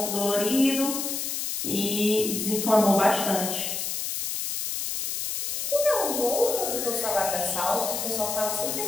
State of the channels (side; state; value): left; noise; hiss, 3 dB below the sound